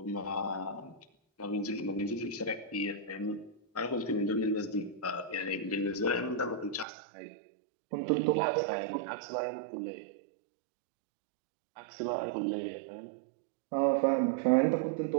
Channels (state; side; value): drops out; left; at 6.9 s